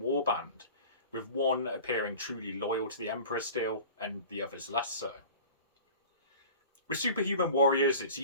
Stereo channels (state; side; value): inverted; both; correlation -0.40